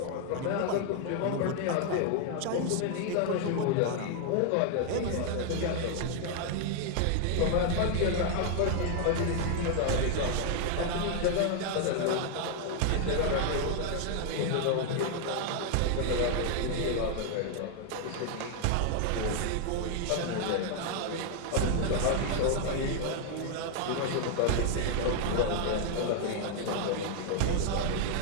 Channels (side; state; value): both; different; correlation 0.00